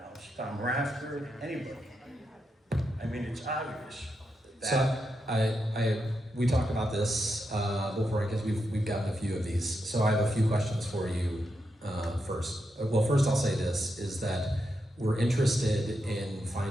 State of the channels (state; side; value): normal; both; correlation 0.85